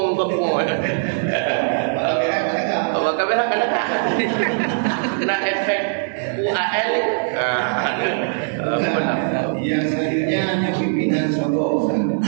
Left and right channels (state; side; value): silent; left; digital silence